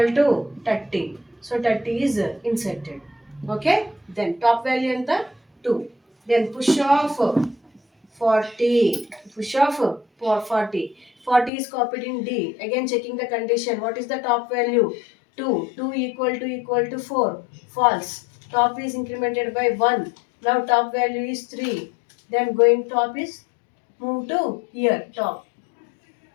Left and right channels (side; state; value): right; drops out; at 11.5 s